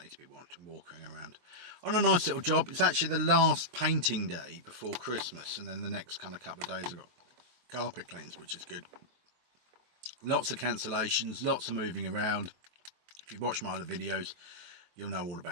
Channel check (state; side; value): late; left; 23 ms